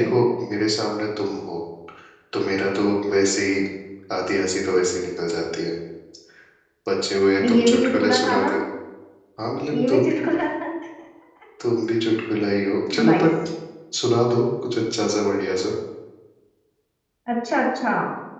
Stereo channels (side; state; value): both; identical; correlation 1.00